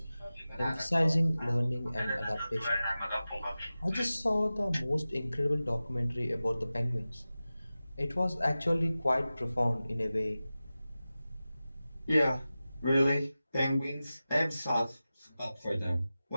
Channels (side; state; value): both; inverted; correlation -0.95